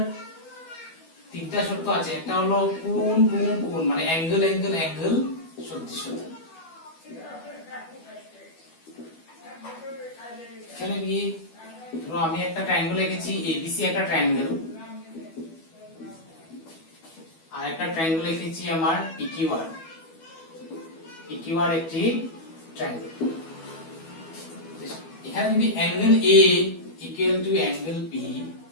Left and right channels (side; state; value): right; late; 12 ms